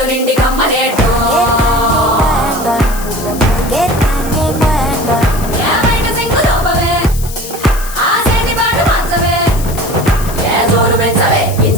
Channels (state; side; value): noise; left; hiss, 13 dB below the sound